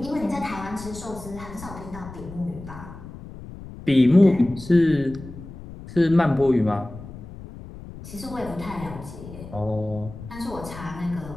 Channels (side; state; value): left; noise; rumble, 14 dB below the sound